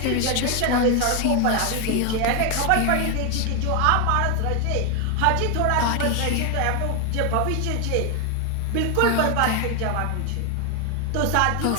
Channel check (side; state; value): both; different; correlation 0.01